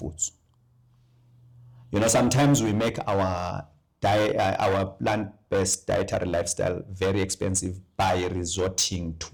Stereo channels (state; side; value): identical; both; correlation 1.00